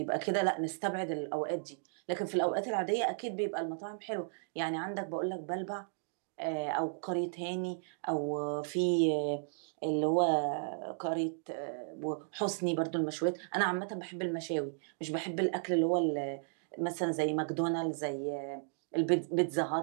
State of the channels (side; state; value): left; silent; digital silence